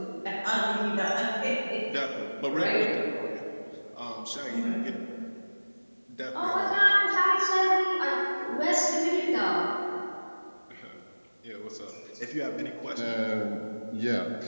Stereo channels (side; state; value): both; inverted; correlation -1.00